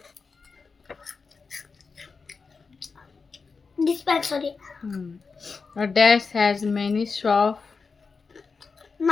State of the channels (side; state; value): right; quieter; 4.8 dB